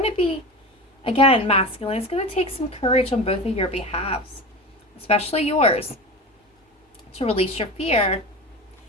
to be, again, masculine. It's going to take some courage on both of your behalves, especially yours, to release your fear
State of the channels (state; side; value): normal; both; correlation 0.28